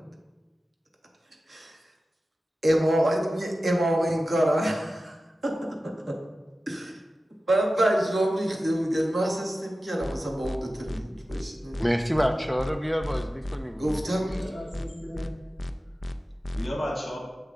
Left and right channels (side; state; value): both; normal; correlation 0.95